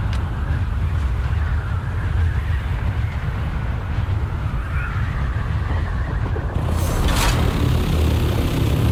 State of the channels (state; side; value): identical; both; correlation 1.00